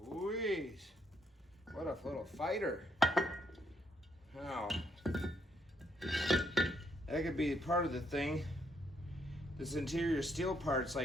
Louise, what a little fighter. Now, that could be part of the thing. This interior steel part's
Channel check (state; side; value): normal; both; correlation 0.73